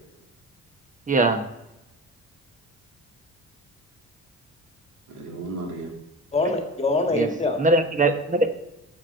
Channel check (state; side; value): normal; both; correlation 0.30